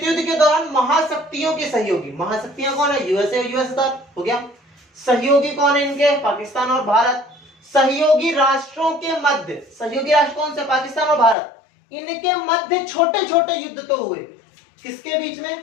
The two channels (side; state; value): right; drops out; at 11.4 s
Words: युद्ध के दौरान महाशक्तियों के सहयोगी, महाशक्तियां कौन है, यूएसए और यूएसएसआर हो गया। सहयोगी कौन है इनके, पाकिस्तान और भारत। सहयोगी राष्ट्रों के मध्य, सहयोगी राष्ट्र कौन से, पाकिस्तान और भारत, इनके मध्य छोटे छोटे युद्ध तो हुए। किसके बीच